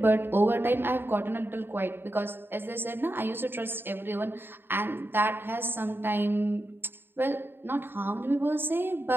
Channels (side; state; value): left; late; 0.10 ms